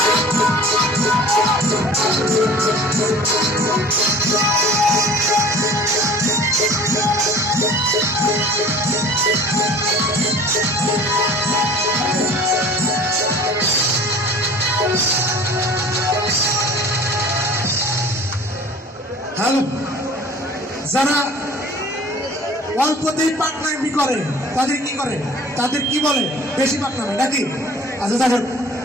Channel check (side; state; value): both; normal; correlation 0.45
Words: যারা অল্পতেই পাকনামি করে তাদের কি করে, তাদের কি বলে? বেশি পাকনামি নাকি? আচ্ছা দেখেন,